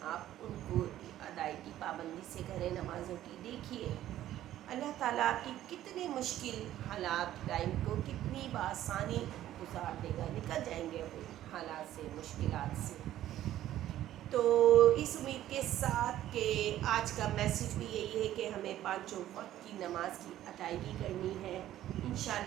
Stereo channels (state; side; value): quieter; left; 13.0 dB